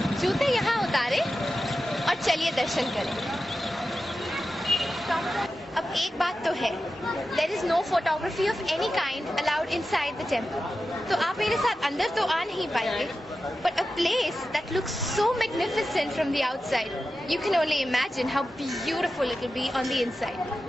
जूते यहाँ उतारे और चलिए दर्शन करें. अब एक बात तो है, there is no photography of any kind allowed inside the temple. तो आप मेरे साथ अंदर तो आ नहीं पाएंगे, but a place that looks so magnificent from the outside, you can only imagine how beautiful it will be on the inside.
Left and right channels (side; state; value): both; normal; correlation 0.92